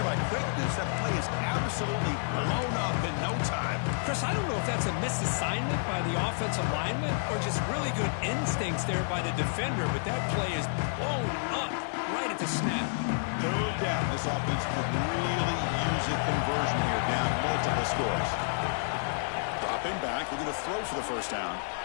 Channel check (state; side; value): silent; right; digital silence